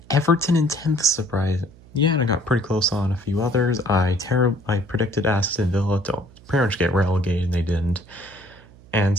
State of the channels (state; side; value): noise; right; hum, 24 dB below the sound